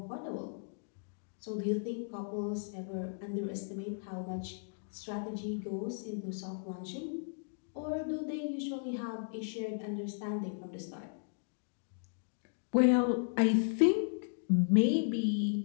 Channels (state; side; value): silent; right; digital silence